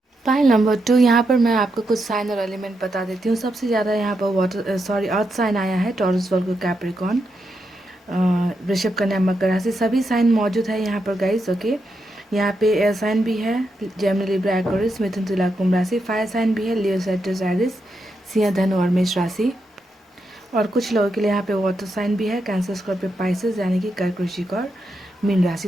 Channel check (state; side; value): normal; both; correlation 0.84